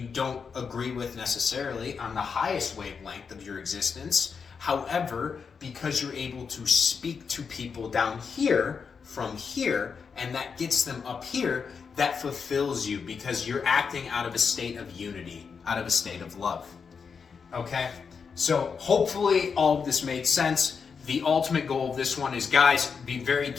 don't agree with necessarily on the highest wavelength of your existence. However, because you're able to speak to people down here from here, and that gets them up here, that fulfills you, because you're acting out of a state of unity, out of a state of love. Okay? So hopefully all of this made sense. The ultimate goal of this one is, guys, be very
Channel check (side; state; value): right; quieter; 5.9 dB